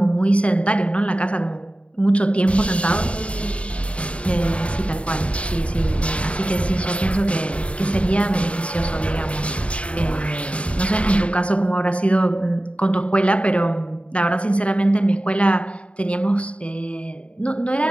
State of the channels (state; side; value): late; right; 0.062 ms